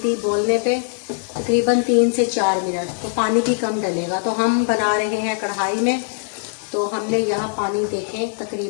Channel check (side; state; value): right; silent; 65 dB below the other